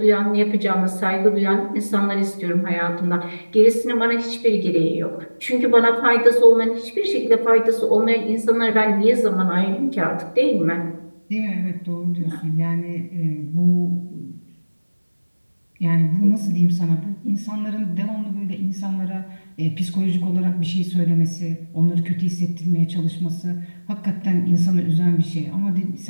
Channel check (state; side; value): inverted; both; correlation -1.00